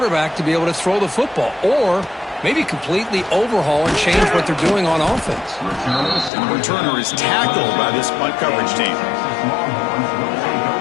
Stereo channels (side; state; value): right; drops out; at 6.3 s